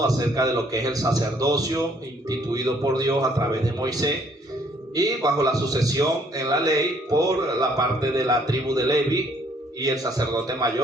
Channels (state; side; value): normal; both; correlation 0.64